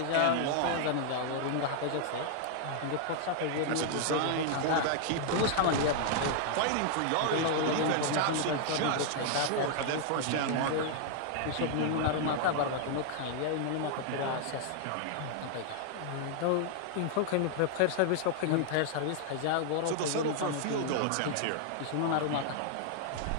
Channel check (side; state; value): both; different; correlation 0.00